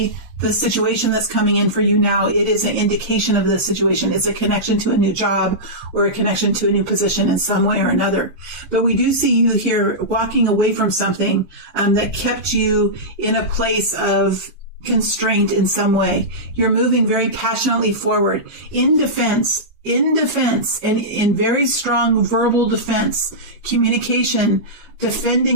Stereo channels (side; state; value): left; late; 5.6 ms